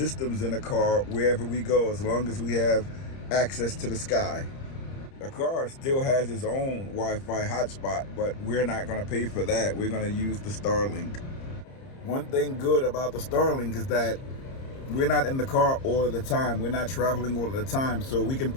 in the car wherever we go, as long as we have access to the sky. The car still has its own Wi-Fi hotspot, but we're not going to pay for that. We're going to use the Starlink. One thing good about the Starlink is that we're not in the car all of the time. We're not traveling all of the time, so we can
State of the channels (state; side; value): late; right; 30 ms